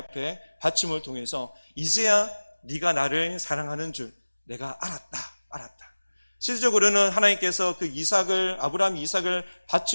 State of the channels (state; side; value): inverted; both; correlation -1.00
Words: 바침을 통해서 이제야 네가 나를 사랑하는 줄 내가 알았다. 실질적으로는 하나님께서 그 아브라함 이삭을